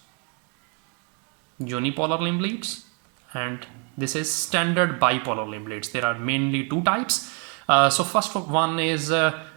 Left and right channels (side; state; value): left; quieter; 34.3 dB